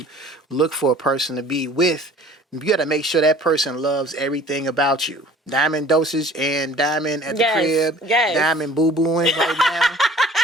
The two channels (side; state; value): both; normal; correlation 0.48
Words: look for a person to be with, you got to make sure that person loves everything about you. Diamond Dosage and Diamond at the crib. Yes. Diamond boo-booing right now.